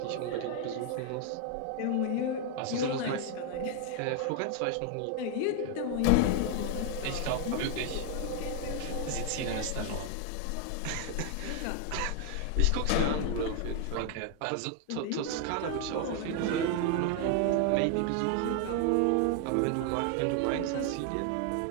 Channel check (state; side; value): different; both; correlation 0.00